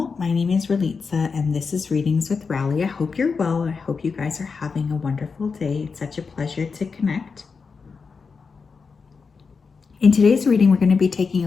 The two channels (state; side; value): quieter; right; 5.1 dB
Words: My name is Ralitza and this is Readings with Rali. I hope you're well. I hope you guys are having a wonderful day. It's such a pleasure to connect. In today's reading, we're going to be taking a